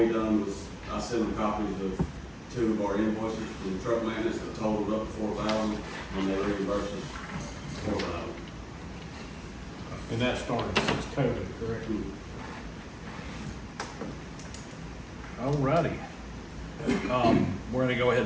done was, I sent them copies of 2 of our invoices from truck maintenance that totaled up to 4,000, and they reimbursed us 4,000. And that started since COVID, correct? Alrighty. We're gonna go ahead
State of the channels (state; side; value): identical; both; correlation 1.00